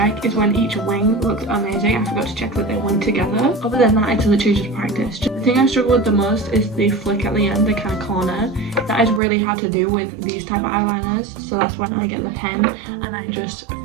is when each wing looked amazing, I forgot to check that they went together. Other than that, it's literally just practice. The thing I struggle with the most is the flick at the end, the kind of corner. That is really hard to do with these type of eyeliners, so that's when I get the pen and I just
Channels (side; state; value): left; drops out; at 9.2 s